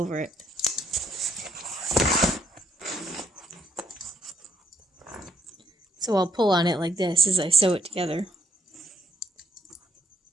it. So I'll pull on it like this as I sew it together.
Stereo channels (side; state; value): both; normal; correlation 0.70